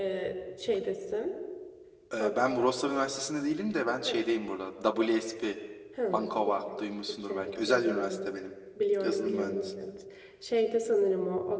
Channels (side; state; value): both; identical; correlation 1.00